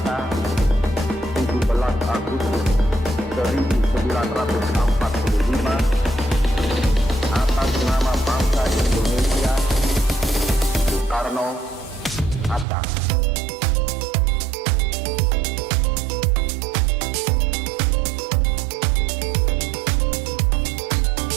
17 Agustus 1945, atas nama bangsa Indonesia, Soekarno, Hatta.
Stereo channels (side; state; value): left; drops out; at 12.7 s